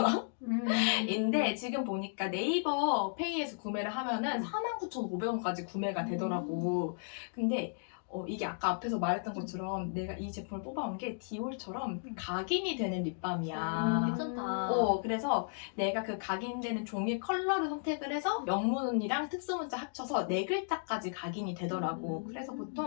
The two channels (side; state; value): right; silent; digital silence